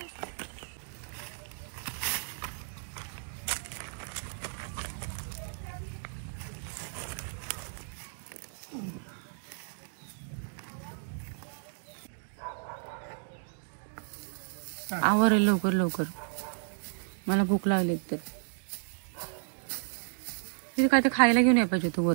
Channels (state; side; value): silent; left; digital silence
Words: आवर लवकर लवकर, मला भूक लागली तर. तिथे काय ते खायला घेऊन या पाहिजे तू